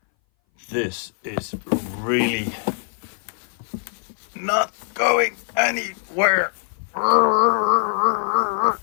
this is really not going anywhere.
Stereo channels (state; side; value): silent; right; 60 dB below the other